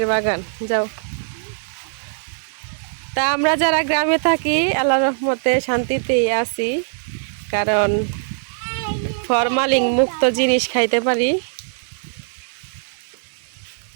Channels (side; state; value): left; silent; digital silence